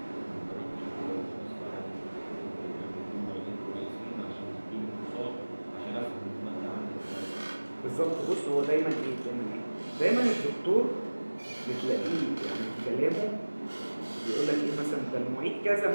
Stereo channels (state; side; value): inverted; both; correlation -1.00